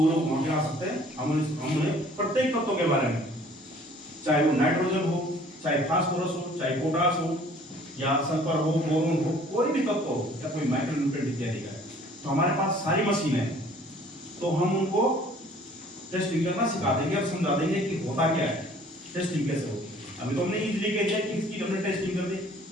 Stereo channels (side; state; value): both; normal; correlation 0.54